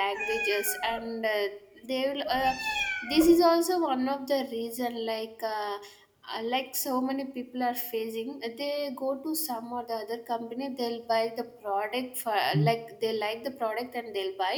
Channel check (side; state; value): both; identical; correlation 1.00